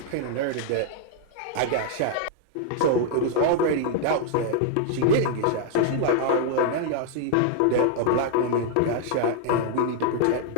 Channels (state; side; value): different; both; correlation -0.01